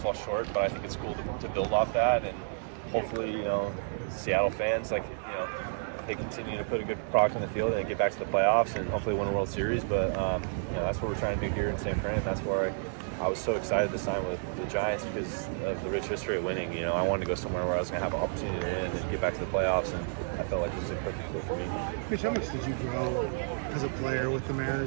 short, but I think it's cool to build off that, and hopefully, Seattle fans, they continue to put a good product on the field and get back to the playoffs and hopefully win a World Series. But that's what we're trying to do here in San Fran. That's where I was so excited to sign with the Giants because of the rich history of winning. I wanted to go somewhere where I was going to have an opportunity to win and get back to the playoffs, and I felt like this was a perfect fit for me. Mitch, how much did you grow as a player with the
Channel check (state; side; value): silent; left; digital silence